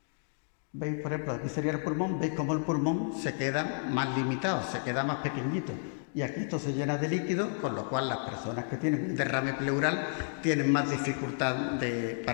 ¿Veis? Por ejemplo, aquí sería el pulmón, veis cómo el pulmón se queda más limitado, se queda más pequeñito. Y aquí esto se llena de líquido, con lo cual las personas que tienen un derrame pleural tienen más dificultad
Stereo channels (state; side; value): silent; right; digital silence